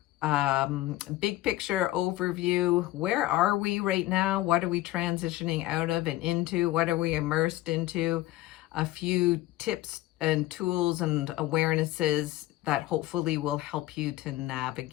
big picture overview. Where are we right now? What are we transitioning out of and into? What are we immersed into? A few tips and tools and awarenesses that hopefully will help you to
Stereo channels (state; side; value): quieter; right; 16.3 dB